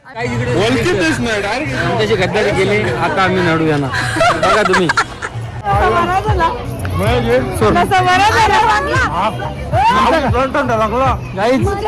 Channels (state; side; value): identical; both; correlation 1.00